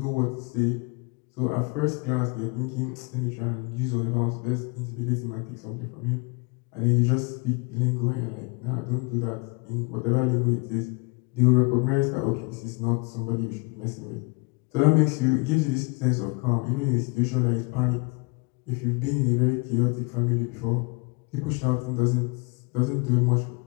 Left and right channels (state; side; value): quieter; right; 29.6 dB